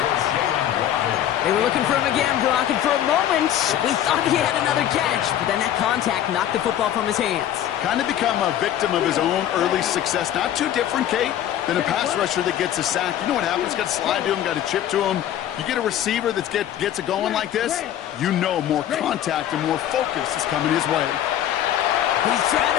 They were looking for him again, Brock, and for a moment, we thought he had another catch. But then that contact knocked the football from his hands. Kind of become a victim of his own early success. Not too different, Kate, than a pass rusher that gets a sack. You know what happens? Got to slide to him, got to chip to him. You get a receiver that gets it going like this, you know more contact and more focus is coming his way. He's trying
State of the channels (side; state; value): right; quieter; 11.2 dB